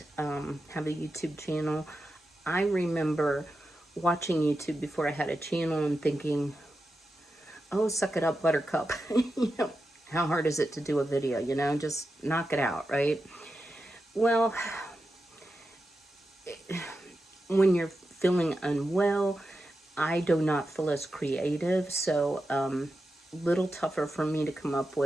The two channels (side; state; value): both; normal; correlation 0.90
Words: have a YouTube channel, I remember watching YouTube before I had a channel and thinking, oh, suck it up, buttercup. How hard is it to do a video? Just knock it out, right? Well, when you're feeling unwell, I do not feel as creative, so little tougher for me to come up